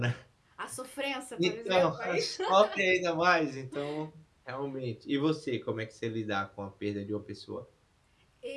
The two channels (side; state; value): both; identical; correlation 1.00